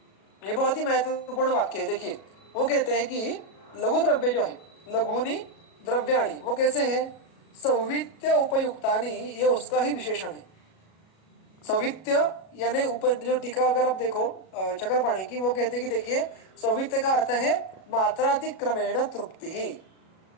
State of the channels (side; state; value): right; late; 37 ms